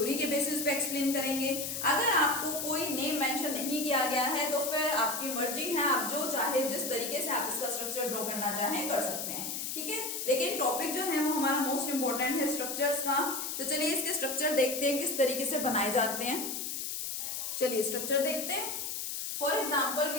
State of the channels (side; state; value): left; noise; hiss, 4 dB below the sound